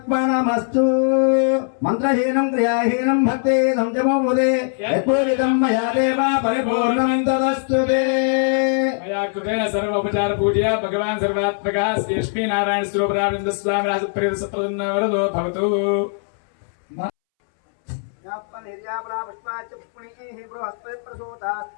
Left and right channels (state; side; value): silent; right; 65 dB below the other